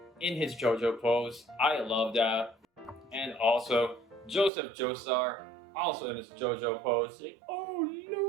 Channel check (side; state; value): left; drops out; at 4.5 s